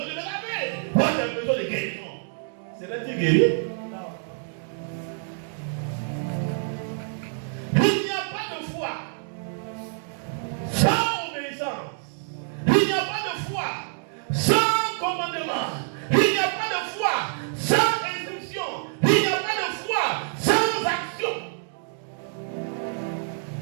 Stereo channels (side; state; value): left; silent; digital silence